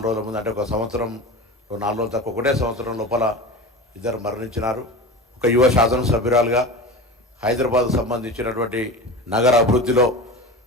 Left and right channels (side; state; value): both; normal; correlation 0.30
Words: రోజుల ముందు, అంటే ఒక సంవత్సరం 4 రోజులు తక్కువ, ఒకటే సంవత్సరం లోపల ఇద్దరు మరణించినారు. ఒక యువ శాసనసభ్యురాలుగా హైదరాబాద్కు సంబంధించినటువంటి నగర అభివృద్ధిలో